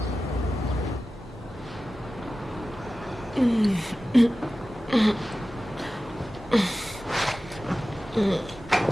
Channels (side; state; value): both; normal; correlation 0.95